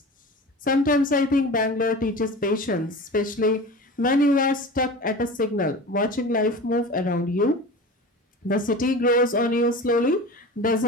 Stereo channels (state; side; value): normal; both; correlation 0.34